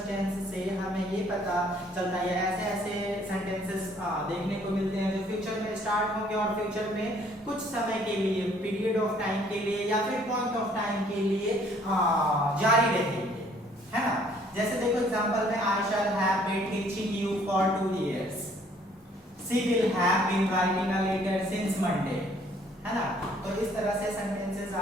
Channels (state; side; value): normal; both; correlation 0.61